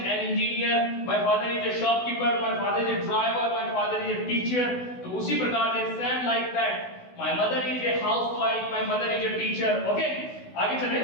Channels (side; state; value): right; late; 16 ms